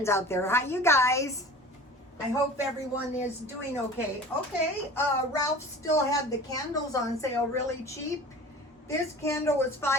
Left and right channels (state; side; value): normal; both; correlation 0.40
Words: out there. Hi, you guys. I hope everyone is doing okay. Ralph still had the candles on sale really cheap. This candle was